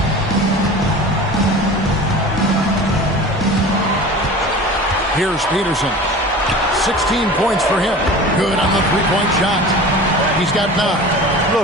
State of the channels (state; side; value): normal; both; correlation 0.37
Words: Here's Peterson. 16 points for him. Good on the three-point shot. He's got 9.